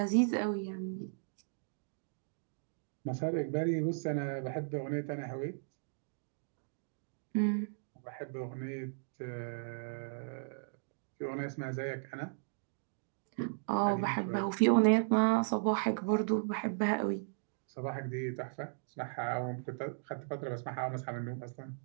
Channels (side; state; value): left; silent; digital silence